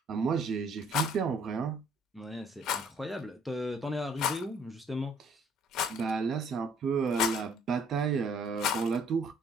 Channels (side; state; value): both; normal; correlation 0.61